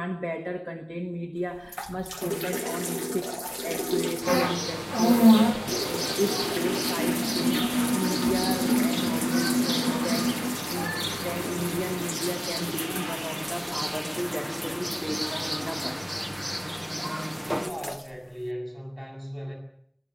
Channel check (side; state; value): both; identical; correlation 1.00